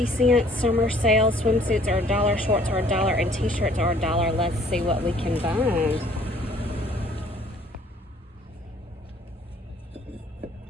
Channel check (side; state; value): both; normal; correlation 0.58